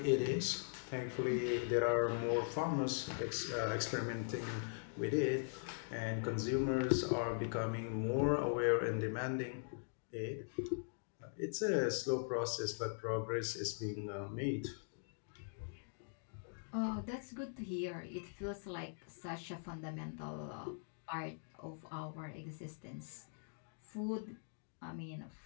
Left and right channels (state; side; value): silent; right; digital silence